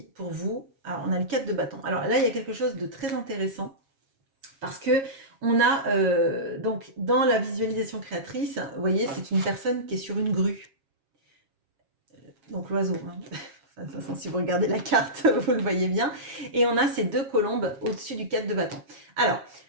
pour vous? Alors on a le 4 de bâton. Alors là, il y a quelque chose de très intéressant parce qu'on a, donc dans la visualisation créatrice, vous voyez, c'est une personne qui est sur une grue. Donc l'oiseau, hein. Enfin, de toute façon, si vous regardez la carte, vous le voyez bien. Et on a ces 2 colombes au-dessus du 4 de bâton. Alors,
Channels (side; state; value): left; late; 7.4 ms